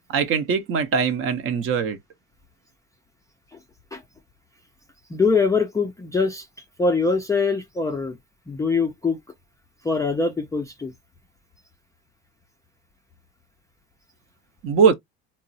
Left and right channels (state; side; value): normal; both; correlation 0.29